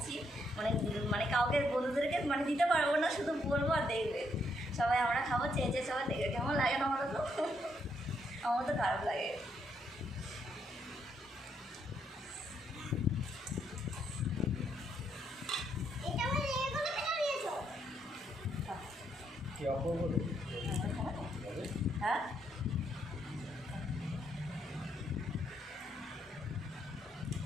মানে মানে কাউকে বন্ধুদেরকে মানে দিতে পারবো না, শুধু বলবো আর দেখবে সবাই। আমরা খাবো, চেয়ে চেয়ে সবাই দেখবে, কেমন লাগে না? আমার তো আমার তো খারাপ লাগে। কি অপূর্ব। হ্যাঁ,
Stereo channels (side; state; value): both; normal; correlation 0.75